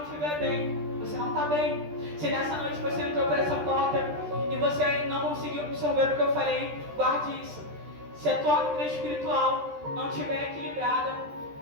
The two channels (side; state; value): left; late; 13 ms